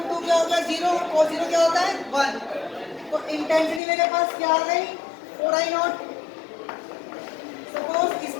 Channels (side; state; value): right; drops out; at 3.8 s